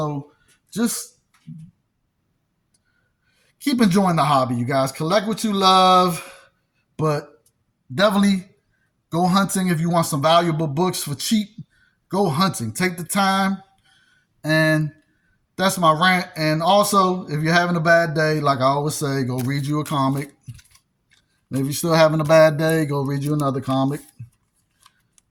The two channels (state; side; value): identical; both; correlation 1.00